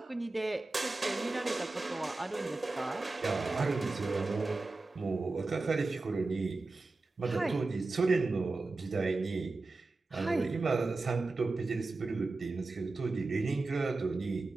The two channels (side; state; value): left; quieter; 3.4 dB